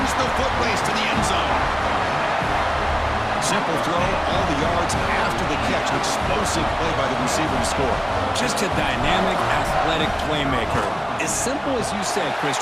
the foot race to the end zone. Simple throw, all the yards after the catch. An explosive play by the receiver to score. Just a dynamic, athletic playmaker. As simple as you said, Chris,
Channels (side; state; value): both; identical; correlation 1.00